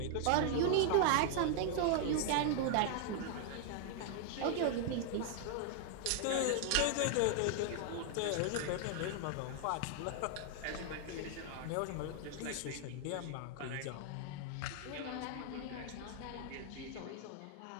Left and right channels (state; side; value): different; both; correlation -0.01